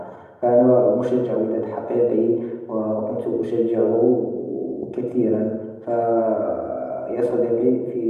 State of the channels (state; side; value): identical; both; correlation 1.00